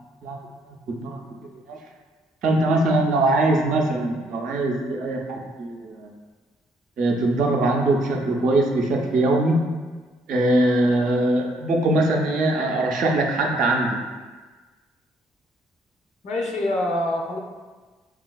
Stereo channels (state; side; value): normal; both; correlation 0.68